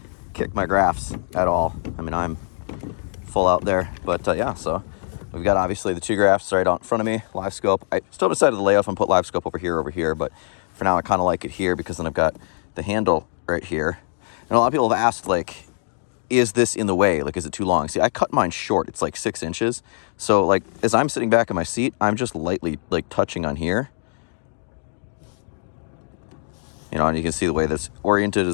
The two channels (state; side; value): silent; right; digital silence